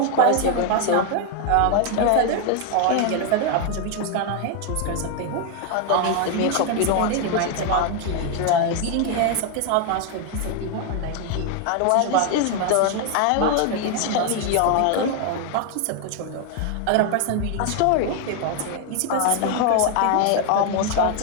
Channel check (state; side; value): different; both; correlation 0.01